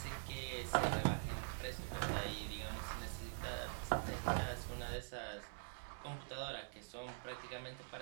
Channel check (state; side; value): silent; left; digital silence